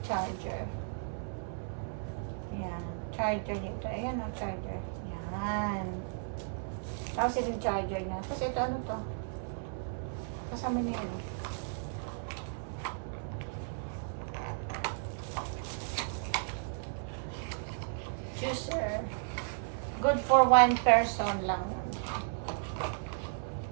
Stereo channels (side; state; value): left; silent; 55 dB below the other